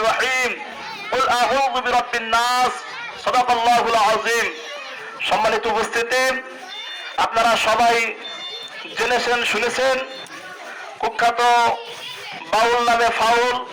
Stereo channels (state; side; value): identical; both; correlation 1.00